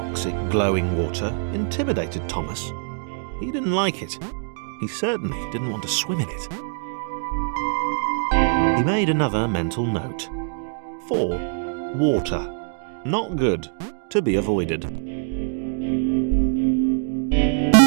glowing water intimidated Thomas. He didn't like it. He certainly didn't want to swim in it. He made another mental note. 4. Water. Not good. To be avoided.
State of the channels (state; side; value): silent; left; digital silence